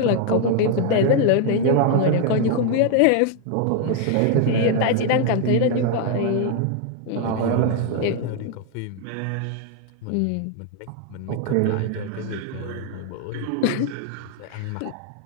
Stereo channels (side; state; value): both; different; correlation 0.00